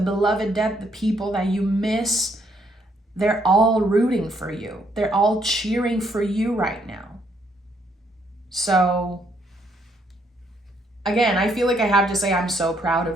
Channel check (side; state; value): both; normal; correlation 0.71